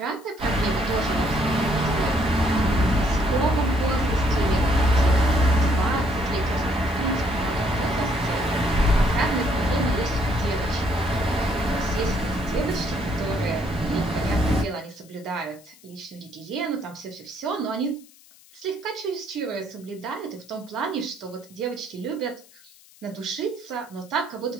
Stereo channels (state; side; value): noise; left; hiss, 25 dB below the sound